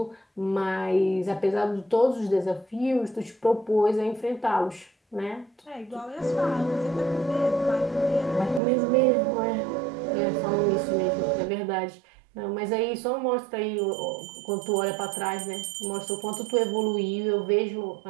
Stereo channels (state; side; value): drops out; left; at 8.6 s